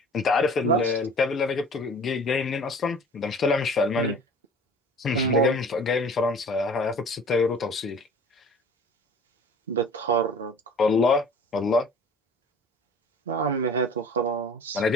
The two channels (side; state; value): both; normal; correlation 0.45